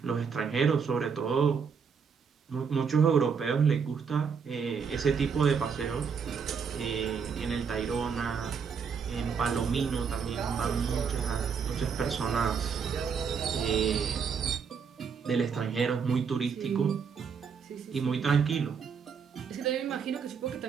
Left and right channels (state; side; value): quieter; left; 6.2 dB